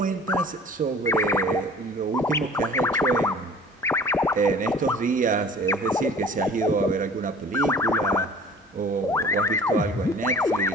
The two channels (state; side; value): normal; both; correlation 0.47